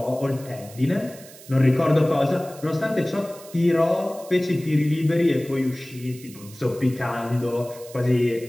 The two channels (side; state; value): right; noise; hiss, 19 dB below the sound